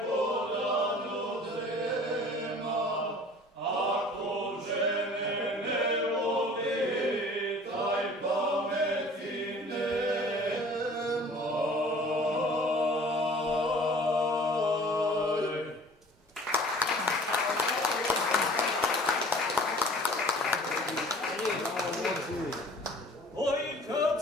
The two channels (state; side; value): normal; both; correlation 0.48